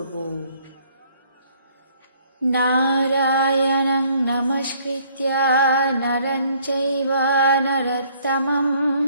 নারায়ণং নমস্কৃত্য নরং চৈব নরোত্তমং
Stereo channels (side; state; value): both; inverted; correlation -0.62